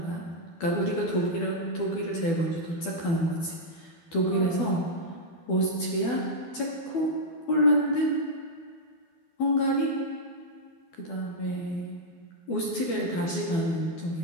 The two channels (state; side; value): late; right; 12 ms